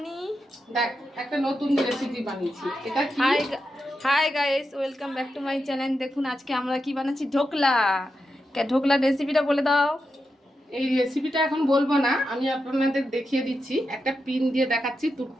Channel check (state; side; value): normal; both; correlation 0.88